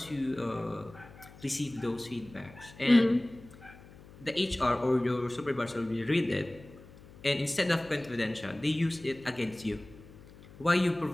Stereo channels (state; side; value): noise; left; hum, 20 dB below the sound